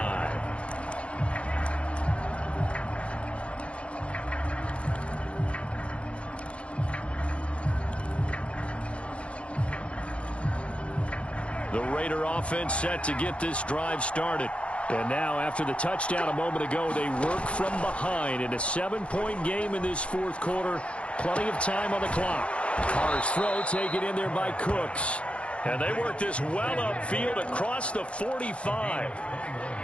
The Raider offense set to get this drive started. And now, after the touchdown a moment ago, they work from behind in a 7-point game in this fourth quarter. Plenty of time on the clock. Carr's throw taken in there by Cooks. And they work this well upfield across the 45.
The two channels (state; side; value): late; right; 0.061 ms